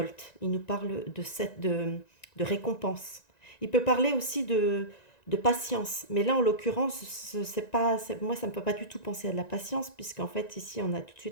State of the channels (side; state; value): right; late; 1.9 ms